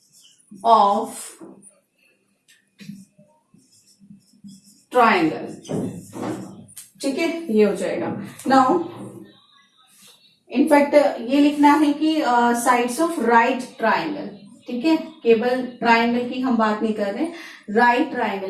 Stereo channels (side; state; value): both; identical; correlation 1.00